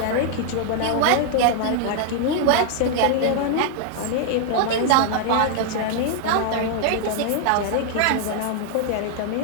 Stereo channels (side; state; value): both; different; correlation 0.00